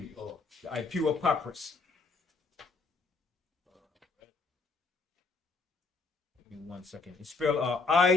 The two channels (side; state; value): right; quieter; 4.0 dB